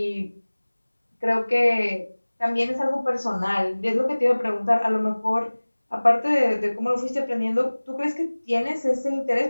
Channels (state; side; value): inverted; both; correlation -1.00